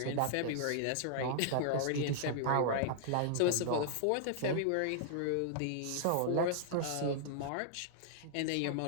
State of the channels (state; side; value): different; both; correlation -0.01